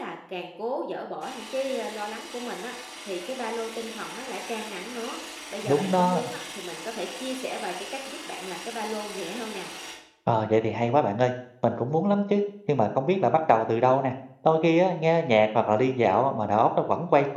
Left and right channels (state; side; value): identical; both; correlation 1.00